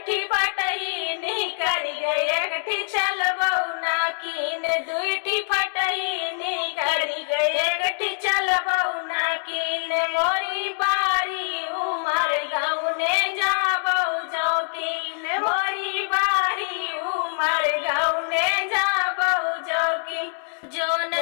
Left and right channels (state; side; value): silent; right; 62 dB below the other